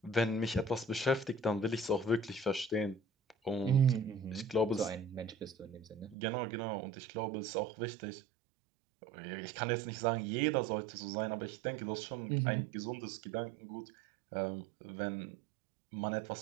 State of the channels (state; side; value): drops out; left; at 6.2 s